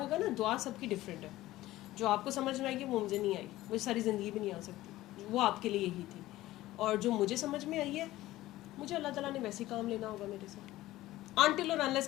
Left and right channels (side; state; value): right; quieter; 16.3 dB